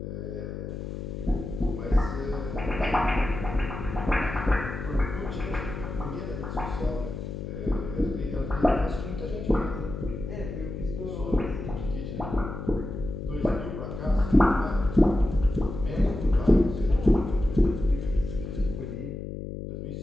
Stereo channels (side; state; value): left; noise; hum, 7 dB below the sound